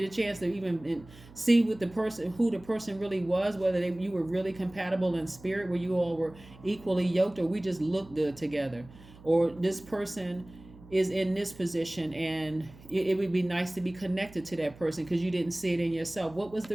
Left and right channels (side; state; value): right; noise; hum, 21 dB below the sound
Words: a chance to even see what the person, who the person really was, whether you were really compatible in spirit, where you all were equally yoked, or we just look good together. Or this person is in this position and it would be nice to be connected to that person because you didn't see it in yourself. What was